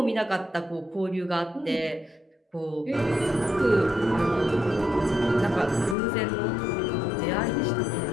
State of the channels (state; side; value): drops out; right; at 6.0 s